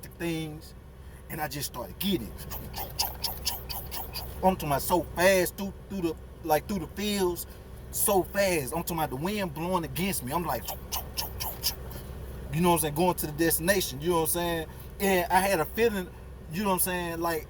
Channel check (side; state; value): both; identical; correlation 1.00